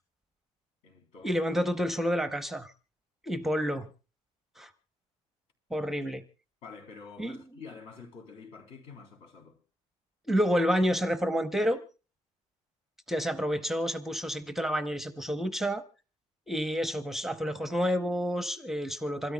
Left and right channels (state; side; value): normal; both; correlation 0.86